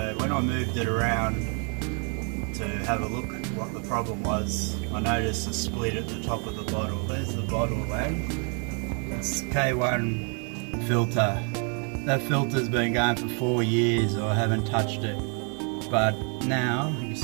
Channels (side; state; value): left; quieter; 38.8 dB